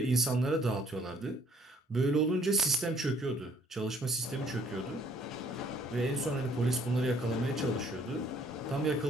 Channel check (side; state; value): both; normal; correlation 0.62